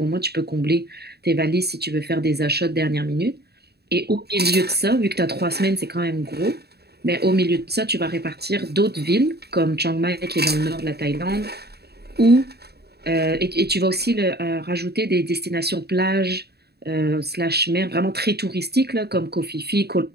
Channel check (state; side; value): late; left; 0.47 ms